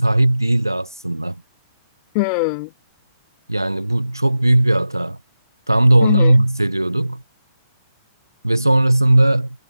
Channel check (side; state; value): both; inverted; correlation -0.93